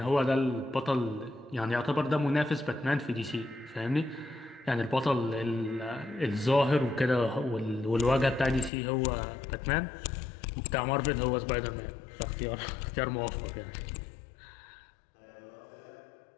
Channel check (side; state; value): right; drops out; at 8.7 s